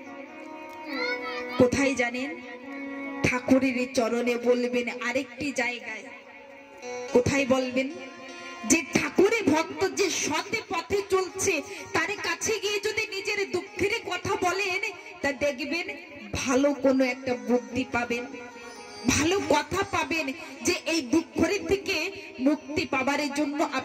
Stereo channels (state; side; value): identical; both; correlation 1.00